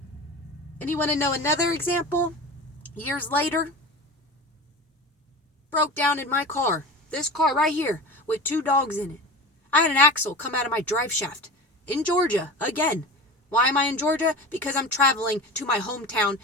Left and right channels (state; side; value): normal; both; correlation 0.31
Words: And you want to know another example? Years later, broke down in my car. This car right here with 2 dogs in it. I had an axle come out of my drive shaft in Georgia again. Why am I in Georgia? Because I'm traveling to my hometown